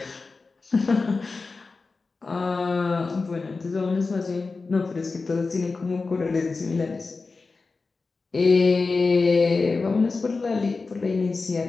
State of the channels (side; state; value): right; quieter; 4.0 dB